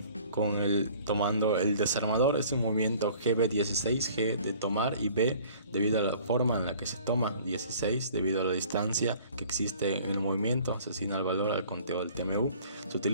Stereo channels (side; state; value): both; inverted; correlation -0.52